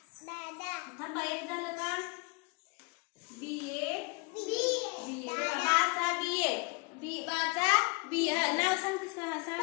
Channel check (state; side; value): quieter; right; 29.5 dB